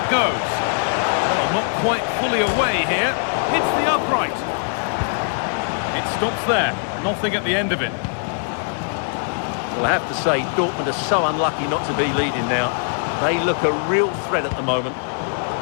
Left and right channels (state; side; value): silent; right; 61 dB below the other